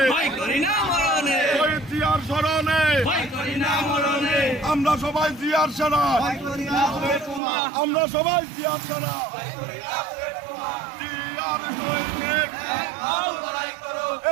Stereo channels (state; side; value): drops out; left; at 7.4 s